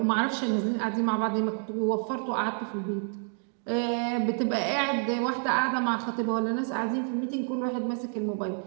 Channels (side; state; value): left; silent; 59 dB below the other